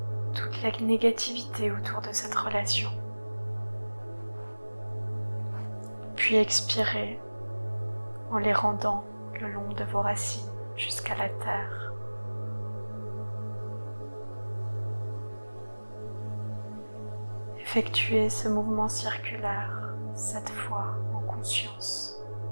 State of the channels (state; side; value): inverted; both; correlation -1.00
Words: toute la négativité autour de cette relation. Puis expirez en les rendant le long de vos racines jusqu'à la terre. Effectuez ce mouvement circulaire 7 fois en conscience.